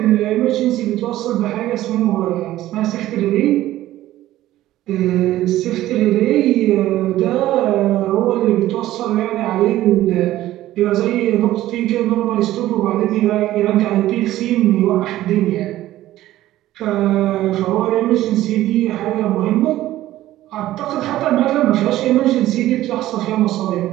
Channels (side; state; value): left; quieter; 14.7 dB